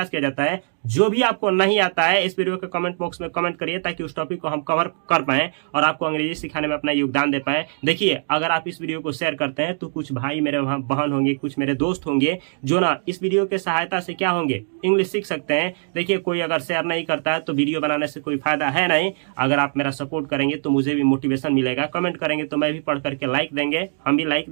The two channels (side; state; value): left; silent; 64 dB below the other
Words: किया जाता है। जो भी आपको नहीं आता है इस वीडियो के कमेंट बॉक्स में कमेंट करिए, ताकि उस टॉपिक को हम कवर कर पाए और आपको अंग्रेजी सिखाने में अपना योगदान दे पाए। देखिए अगर आप इस वीडियो को शेयर करते हैं तो कुछ भाई मेरे बहन होंगे, कुछ मेरे दोस्त होंगे जो ना इस वीडियो के सहायता से क्या होंगे, इंग्लिश सीख सकते हैं। देखिए कोई अगर शेयर नहीं करता है तो वीडियो बनाने से कोई फायदा है नहीं। अगर आप मेरा सपोर्ट करेंगे तो मुझे भी मोटिवेशन मिलेगा, कमेंट करेंगे तो मैं भी पढ़ करके लाइक देंगे, हम भी लाइक